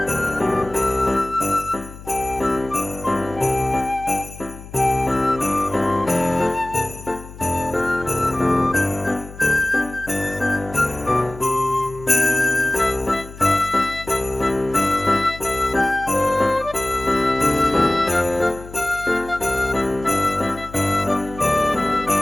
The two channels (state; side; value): noise; left; hum, 16 dB below the sound